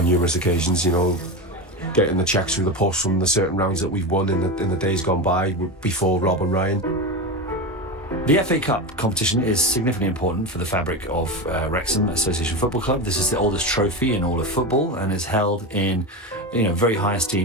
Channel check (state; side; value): normal; both; correlation 0.20